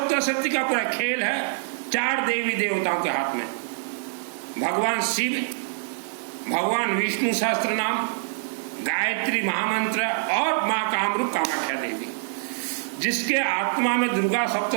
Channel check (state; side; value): silent; left; digital silence